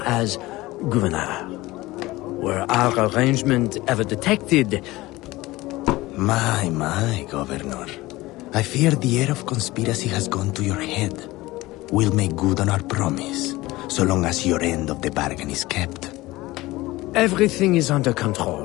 as governor. Were our arrangement ever detected? My, Governor. I fear the air of conspiracy has gone to your head. We'll make good on our promise, so long as your end of the bargain is kept. Everything is under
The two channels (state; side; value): quieter; right; 19.2 dB